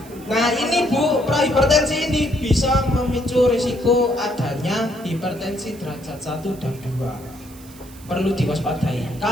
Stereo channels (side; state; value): right; noise; hiss, 22 dB below the sound